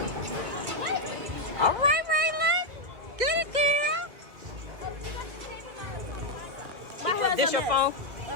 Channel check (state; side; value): late; left; 2.4 ms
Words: All right, Raylan. Get it, girl. This your phone?